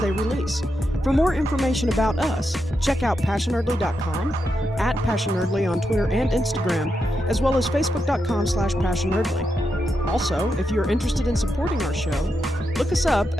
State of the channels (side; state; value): both; normal; correlation 0.85